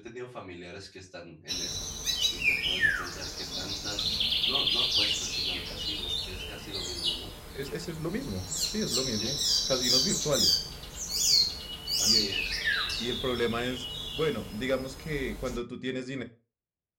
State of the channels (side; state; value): both; identical; correlation 1.00